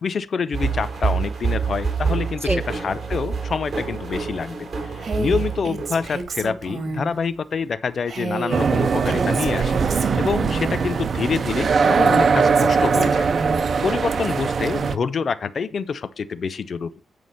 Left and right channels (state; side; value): normal; both; correlation 0.83